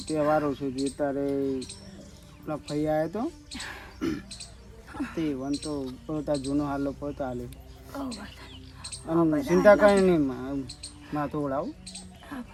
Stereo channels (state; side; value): identical; both; correlation 1.00